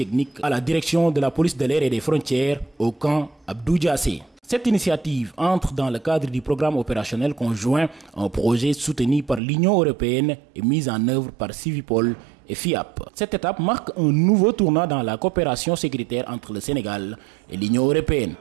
à la direction de la police de l'air et des frontières au camp Abdou Diassé. Cette initiative entre dans le cadre du programme opérationnel conjoint, un projet soutenu par l'Union européenne et mis en œuvre par Civipol et FIAP. Cette étape marque un nouveau tournant dans la coopération sécuritaire entre le Sénégal et l'Union européenne,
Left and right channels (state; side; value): drops out; left; at 9.4 s